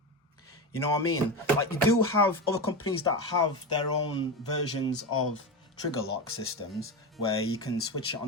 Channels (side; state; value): both; normal; correlation 0.19